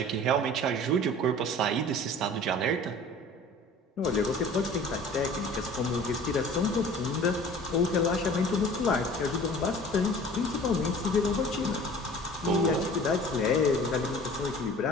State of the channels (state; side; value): normal; both; correlation 0.45